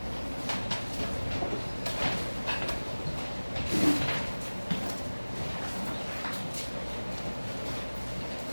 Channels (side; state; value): both; inverted; correlation -1.00